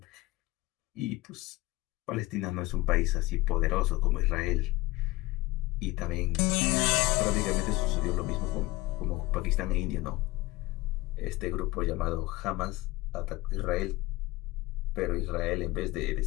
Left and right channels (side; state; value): right; quieter; 19.9 dB